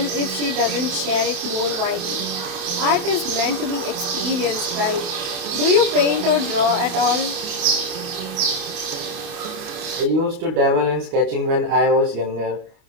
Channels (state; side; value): late; left; 28 ms